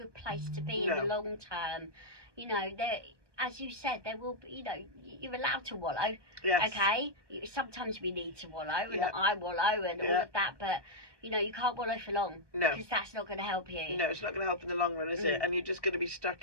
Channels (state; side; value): late; left; 1.2 ms